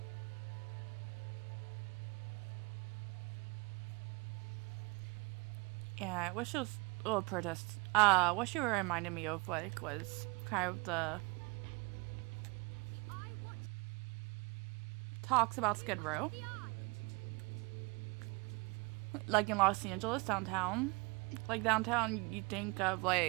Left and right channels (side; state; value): left; quieter; 27.8 dB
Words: Yeah, what she was, oh, protest. What she reminded me of, like, was kind of the talks about Skid Row. Like in Los Angeles, downtown. Like, downtown, you think of,